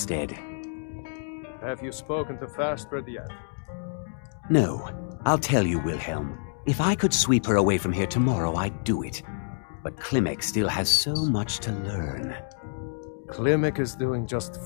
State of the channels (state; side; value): silent; right; digital silence